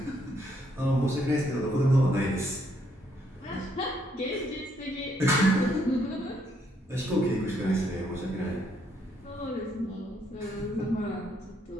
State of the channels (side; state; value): both; normal; correlation 0.72